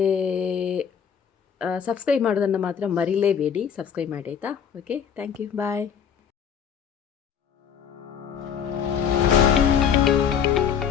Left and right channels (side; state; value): right; quieter; 7.8 dB